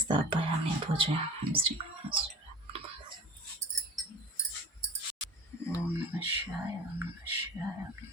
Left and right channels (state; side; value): normal; both; correlation 0.39